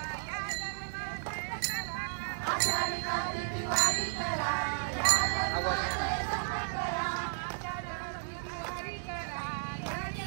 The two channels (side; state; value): left; silent; digital silence